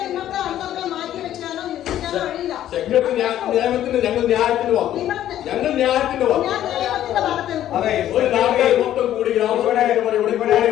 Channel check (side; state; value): right; quieter; 12.0 dB